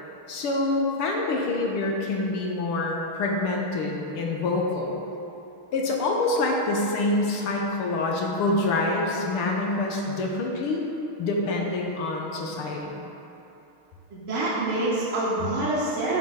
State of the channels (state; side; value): late; right; 6.8 ms